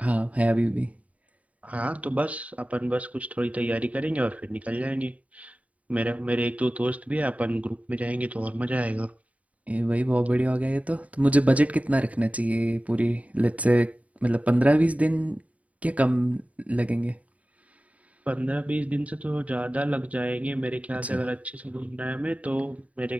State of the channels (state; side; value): late; left; 0.068 ms